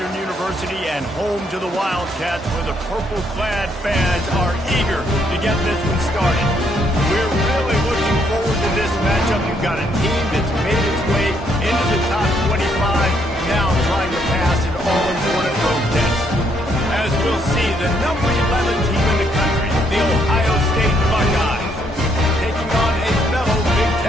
University and home to the Wildcats, where the purple-clad fans are eager to get this one started. We're really looking forward to this matchup. You've got a team that's made its way into the top 25, now trying to pass an all-important road test. As we'll see, the number 11 team in the country, the Ohio State Buckeyes, taking on a fellow Big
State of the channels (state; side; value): normal; both; correlation 0.71